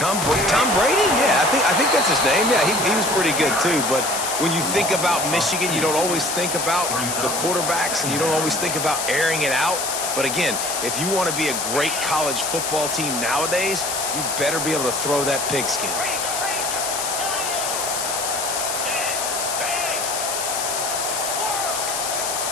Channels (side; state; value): left; noise; hiss, 2 dB below the sound